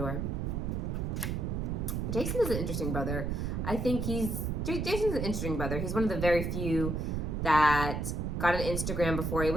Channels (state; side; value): noise; right; rumble, 1 dB below the sound